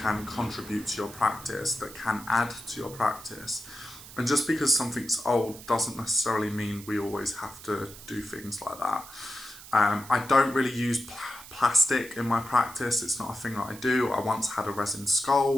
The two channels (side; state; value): right; noise; hiss, 16 dB below the sound